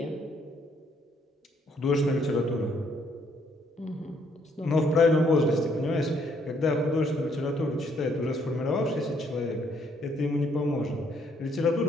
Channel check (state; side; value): normal; both; correlation 0.69